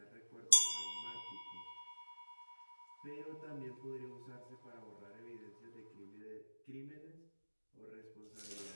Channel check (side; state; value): both; inverted; correlation -1.00